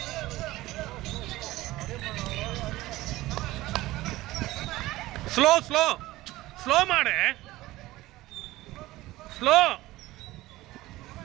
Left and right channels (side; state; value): left; quieter; 17.7 dB